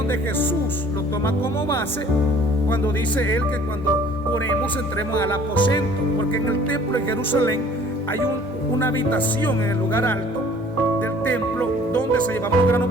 Jesús lo toma como base cuando dice él que cuando oremos entremos al aposento, porque en el templo de Jerusalén hay una habitación en el lugar alto del templo donde se llevaban los granos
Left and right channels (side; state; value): both; normal; correlation 0.53